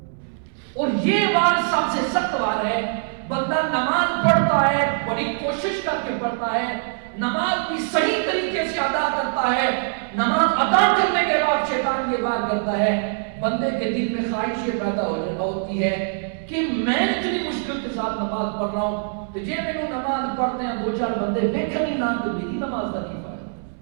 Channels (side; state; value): left; silent; 63 dB below the other